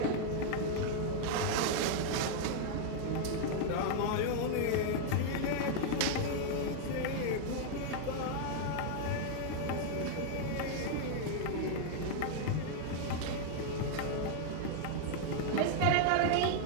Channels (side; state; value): both; different; correlation 0.00